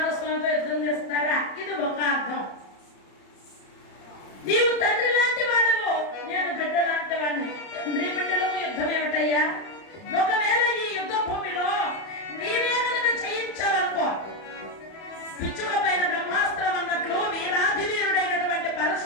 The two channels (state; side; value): late; right; 30 ms